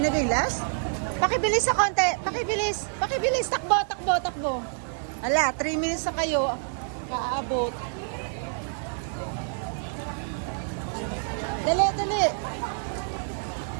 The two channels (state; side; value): silent; left; 58 dB below the other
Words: na ba yung last? Pakibilis sa konti, pakibilis. Pakibilis, takbo, takbo, takbo. Hala, 3 minutes na kayo. Kaabot. Dali, dali.